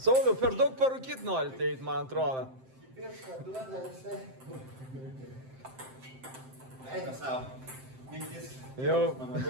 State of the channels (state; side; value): late; left; 7.7 ms